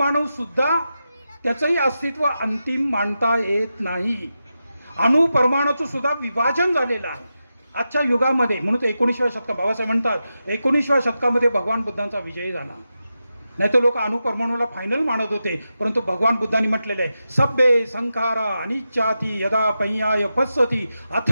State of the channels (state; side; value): inverted; both; correlation -0.90